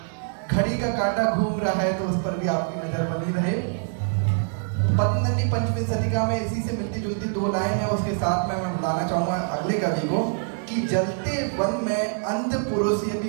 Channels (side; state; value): left; silent; 59 dB below the other